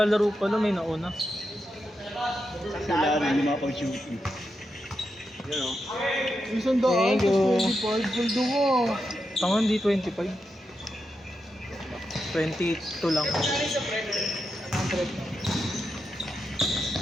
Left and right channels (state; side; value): normal; both; correlation 0.86